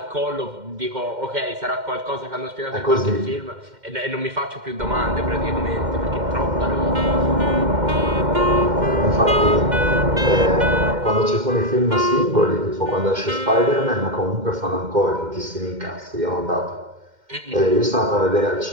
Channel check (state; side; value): late; left; 2.1 ms